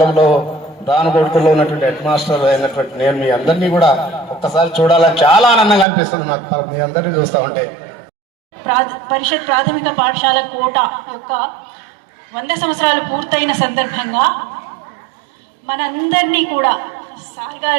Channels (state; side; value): drops out; left; at 5.9 s